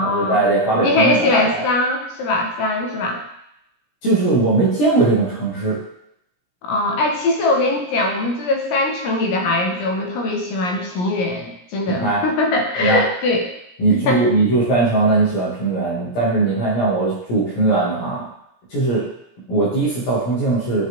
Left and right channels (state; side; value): late; right; 17 ms